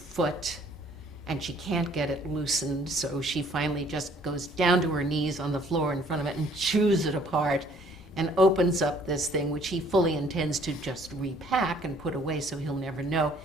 and she can't get it loosened. So she finally just goes down to her knees on the floor in front of it and chews it apart and opens up this thing, which he fully intends to just repack and put away so he'll never know.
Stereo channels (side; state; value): both; normal; correlation 0.59